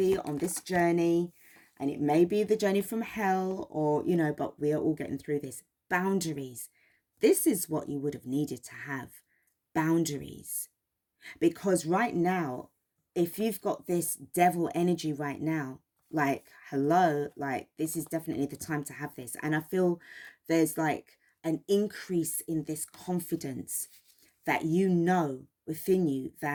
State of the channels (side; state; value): both; identical; correlation 1.00